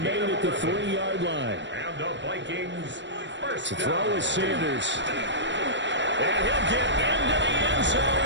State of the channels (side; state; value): left; late; 0.53 ms